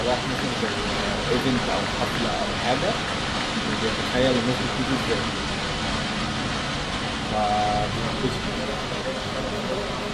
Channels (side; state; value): both; identical; correlation 1.00